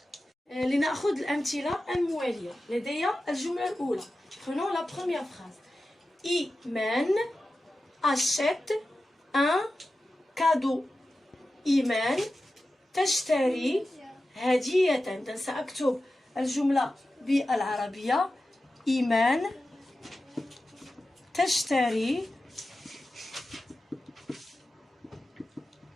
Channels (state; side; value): normal; both; correlation 0.93